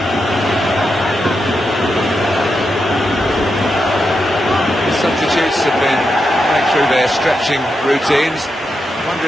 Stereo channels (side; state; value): both; normal; correlation 0.86